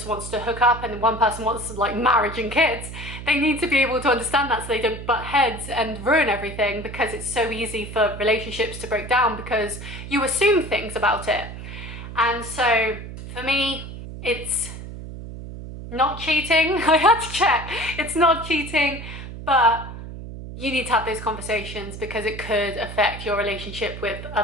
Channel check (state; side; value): noise; right; hum, 11 dB below the sound